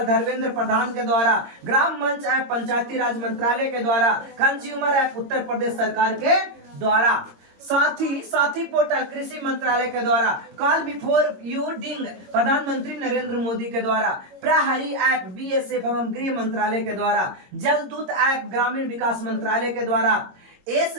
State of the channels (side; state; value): left; late; 22 ms